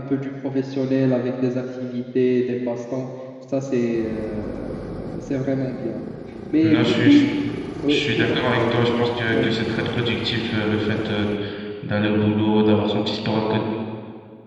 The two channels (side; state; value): both; identical; correlation 1.00